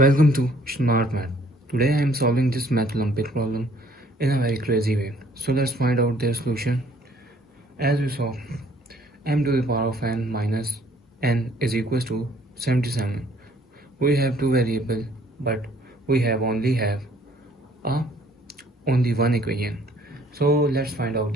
to Smart Math. Today I am solving this Math Olympiad problem in a very crazy way. So let's find out their solution. As we saw, m to the power of n minus n is equals to 77. We have two variables, but we only have only one equation. So let's find out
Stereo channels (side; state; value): both; normal; correlation 0.60